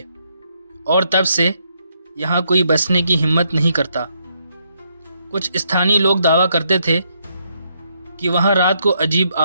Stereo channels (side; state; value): both; inverted; correlation -0.75